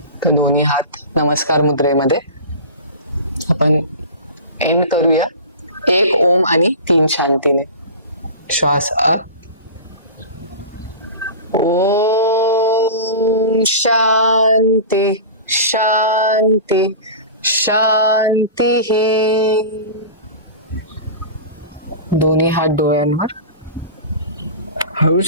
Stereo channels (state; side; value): inverted; both; correlation -0.32